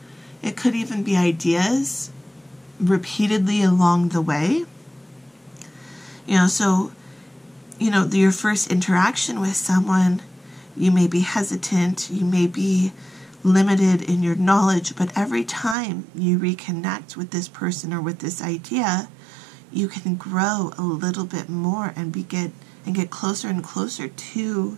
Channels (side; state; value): left; drops out; at 15.8 s